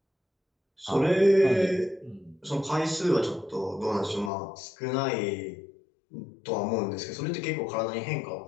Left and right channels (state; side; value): drops out; right; at 4.3 s